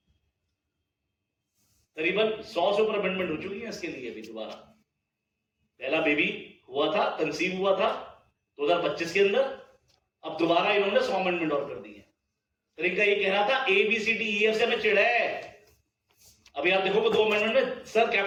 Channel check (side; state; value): both; identical; correlation 1.00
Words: करीबन 100 से ऊपर अमेंडमेंट हो चुकी है इसके लिए भी। दोबारा पहला बेबी हुआ था, कंसीव हुआ था 2025 के अंदर, अब दोबारा इन्होंने 100 अमेंडमेंट और कर दी है। तो इनका ये कह रहा था ABCDEF से हमें चिढ़ है। अभी आप देखोगे 2 अमेंडमेंट में सर